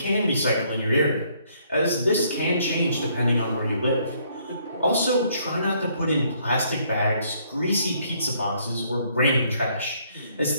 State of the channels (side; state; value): both; inverted; correlation -0.67